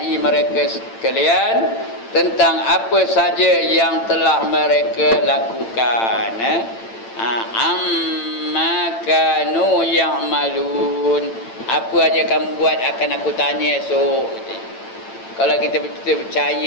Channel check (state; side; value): late; right; 8.9 ms